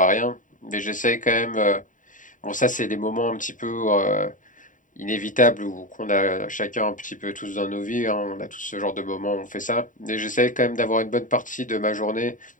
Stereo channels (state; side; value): late; right; 0.38 ms